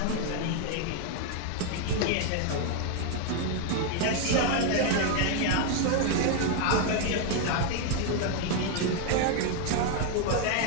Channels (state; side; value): different; both; correlation 0.01